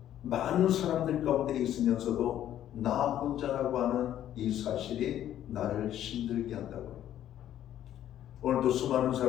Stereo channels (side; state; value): right; quieter; 11.5 dB